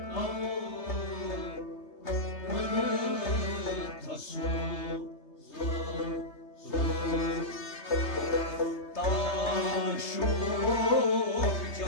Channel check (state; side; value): late; right; 3.3 ms